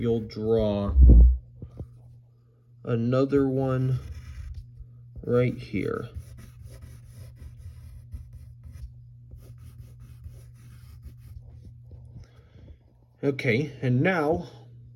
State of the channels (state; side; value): identical; both; correlation 1.00